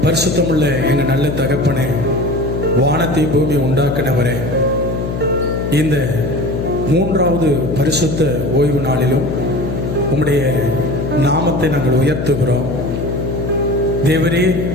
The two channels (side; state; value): left; noise; hum, 3 dB below the sound